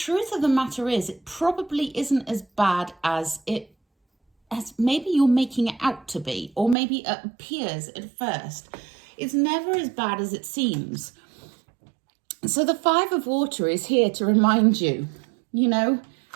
of the matter is, it probably isn't as bad as maybe you're making it out to be, or maybe it appears at first. It's never as bad as it seems. So the Five of Water is here to remind you, you know,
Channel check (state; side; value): drops out; left; at 6.8 s